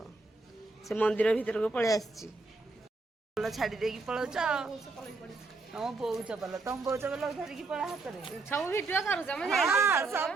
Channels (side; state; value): left; quieter; 3.7 dB